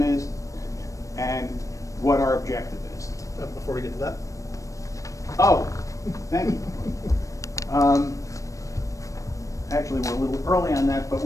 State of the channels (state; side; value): late; right; 0.16 ms